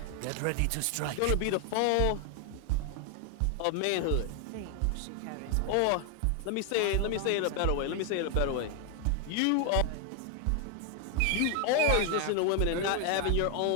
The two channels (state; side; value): different; both; correlation 0.00